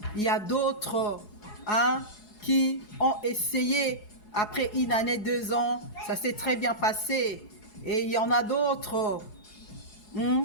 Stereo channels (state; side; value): late; right; 4.8 ms